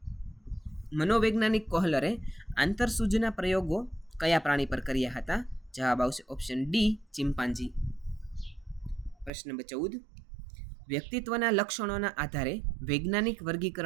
મનોવૈજ્ઞાનિક કોહલરે આંતરસૂઝના પ્રયોગો કયા પ્રાણી પર કર્યા હતા? જવાબ આવશે ઓપ્શન ડી, ચિમ્પાન્જી. પ્રશ્ન નંબર 14, વ્યક્તિત્વના લક્ષણોના આધારે વૈજ્ઞાનિક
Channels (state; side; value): drops out; left; at 9.3 s